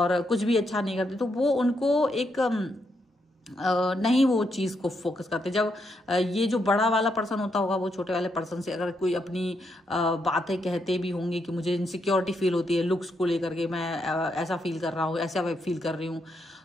कुछ भी अच्छा नहीं करते। तो वो उनको एक नहीं वो चीज को फोकस करते। जब ये जो बड़ा वाला पर्सन होता होगा, वो छोटे वाले पर्सन से अगर कोई अपनी बातें कहते भी होंगे कि मुझे इनसिक्योरिटी फील होती है लुक्स को लेकर के, मैं ऐसा फील कर रहा हूँ, ऐसा फील कर रही हूँ,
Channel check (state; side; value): normal; both; correlation 0.79